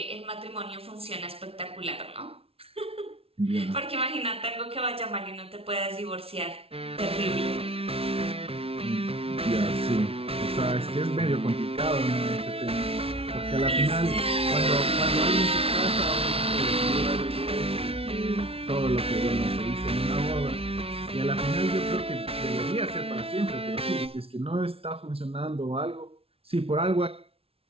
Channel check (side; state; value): left; late; 0.28 ms